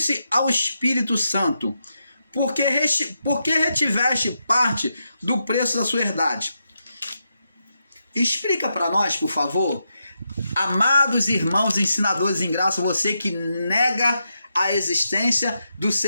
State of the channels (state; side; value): inverted; both; correlation -0.85